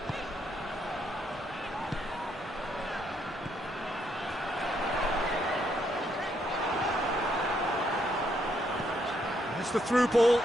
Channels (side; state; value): both; normal; correlation 0.74